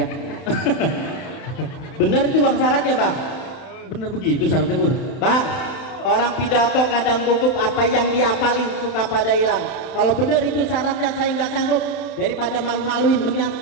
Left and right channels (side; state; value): right; late; 31 ms